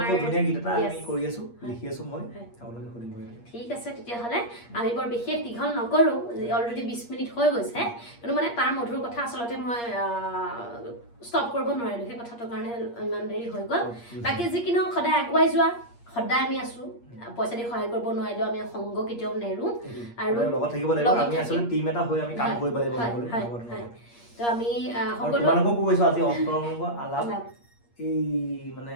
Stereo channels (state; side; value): late; right; 8.5 ms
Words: খুব ধুনীয়া গীত এটা আমি কৰি আছোঁ, লিখি আছোঁ মই, আপোনালোকে শুনিব। ঠিক আছে, তেতিয়াহ'লে আমি বৰ বিশেষ দীঘল নকৰোঁ, অলৰেডি 20 মিনিট হৈ গৈছে, কিন্তু মানে তাৰ মধুৰ কথা আচলতে মই ষ্টপ কৰিব নোৱাৰিলোঁ, সেই কথাটোৰ কাৰণে ইমান দেৰি হৈ গ'ল। বাকী যি কি নহওক সদায় আগুৱাই যোৱা, সদায় আমি আছোঁ, পইচা দি সহায় কৰিব নোৱাৰিলেও আমি সংগ কেতিয়াও নেৰোঁ আৰু লগত থাকিব লাগিব, আমি আচলতে টিম এটা হৈ আমি কাম কৰিব লাগিব। তো আমি সকলোকো কৈছোঁ আজি অন্তৰংগ আলাপ এই মানে